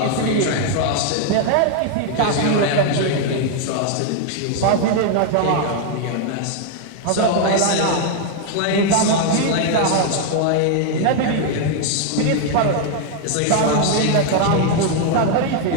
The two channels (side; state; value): both; different; correlation 0.00